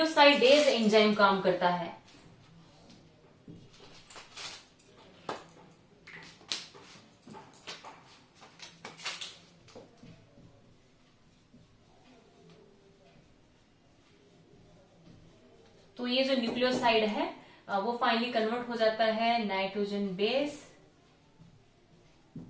एंजाइम काम करता है तो ये जो न्यूक्लियोसाइड है वो फाइनली कन्वर्ट हो जाता है nitrogen base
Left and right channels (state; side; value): identical; both; correlation 1.00